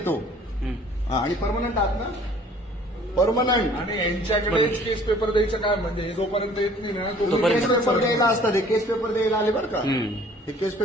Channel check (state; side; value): normal; both; correlation 0.54